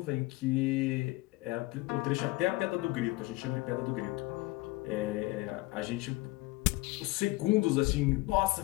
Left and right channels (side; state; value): right; quieter; 21.0 dB